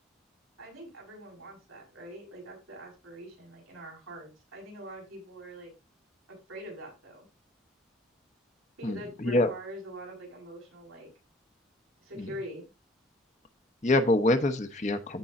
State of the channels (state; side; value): normal; both; correlation 0.53